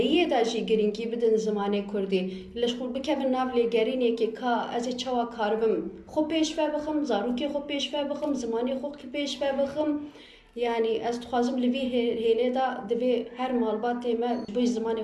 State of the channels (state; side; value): identical; both; correlation 1.00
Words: دا جی گرینگی بدن زمانه کردی لش خود بکن ناو لگرینه که که از چوا کاربم خوب پیش بخم زارو که خوب پیش بخم زمانه خوب پیش بخم یعنی از تخوازم لوی هیله دا دوی هر مالبات ما بوی زمانی